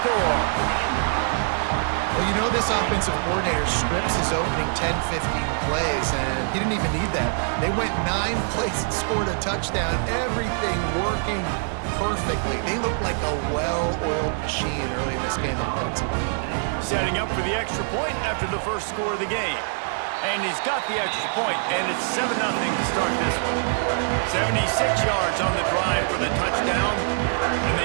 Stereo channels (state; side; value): silent; left; 62 dB below the other